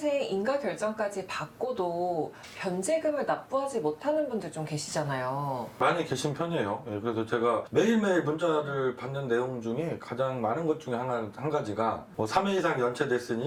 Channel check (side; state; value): both; identical; correlation 1.00